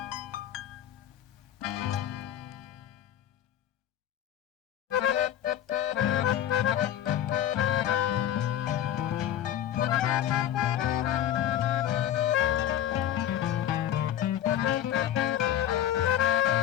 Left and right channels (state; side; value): quieter; right; 11.0 dB